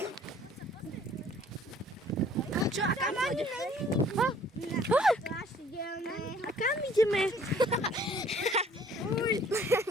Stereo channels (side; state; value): both; normal; correlation 0.57